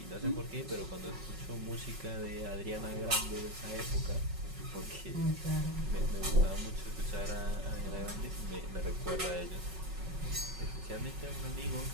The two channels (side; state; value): left; late; 5.4 ms